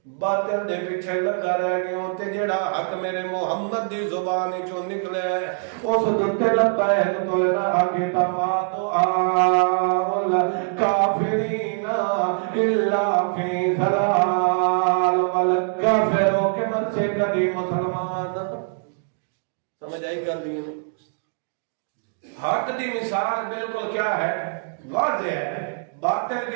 باطل دے پیچھے لگا رہ گیوں تے جڑا حق میرے محمد دی زبان چوں نکلے اس دتے لبیک تو نہ آگے تما تو آل کافرین الا فی ضلال والکافروں کے من سے کبھی مسلمان سمجھ آئی کر دی نہیں۔ حق دی مثال بالکل کیا ہے؟ واضح ہے، باطل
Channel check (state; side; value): silent; left; digital silence